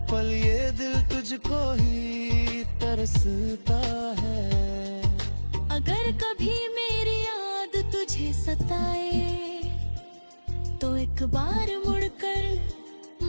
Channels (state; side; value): inverted; both; correlation -1.00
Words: पल ये दिल तुझको ही तरसता है। अगर कभी मेरी याद तुझे सताए तो एक बार मुड़कर